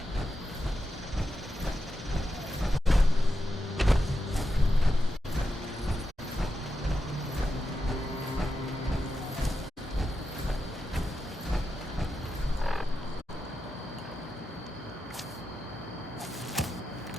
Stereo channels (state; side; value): normal; both; correlation 0.88